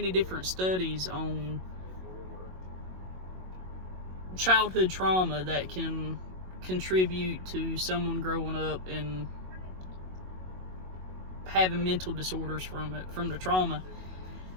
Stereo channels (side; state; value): left; late; 22 ms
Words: different studies on childhood trauma that can contribute to someone growing up and having mental disorders from the trauma.